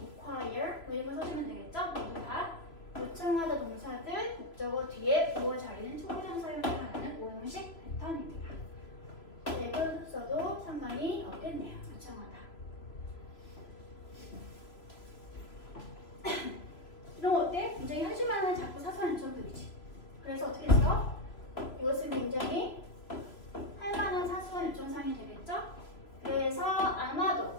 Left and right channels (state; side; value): late; right; 3.0 ms